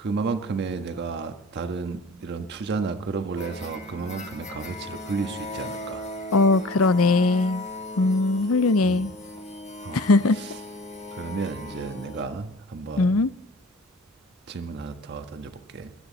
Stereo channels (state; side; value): normal; both; correlation 0.44